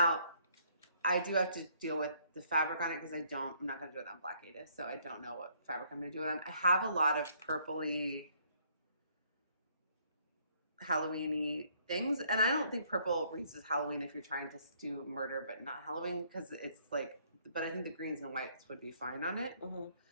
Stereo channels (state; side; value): inverted; both; correlation -0.66